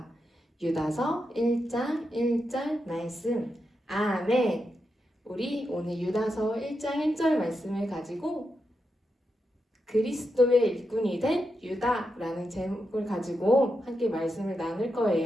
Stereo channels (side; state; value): both; normal; correlation 0.86